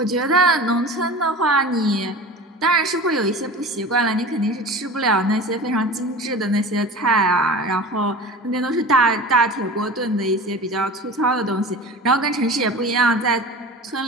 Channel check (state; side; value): normal; both; correlation 0.35